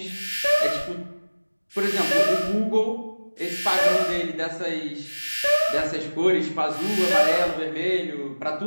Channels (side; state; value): both; inverted; correlation -1.00